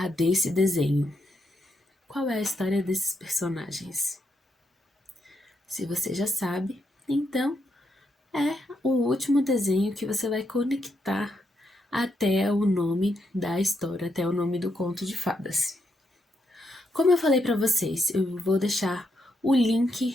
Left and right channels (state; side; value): normal; both; correlation 0.80